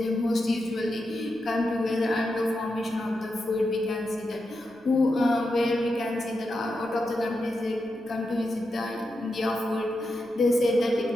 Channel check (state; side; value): noise; right; rumble, 30 dB below the sound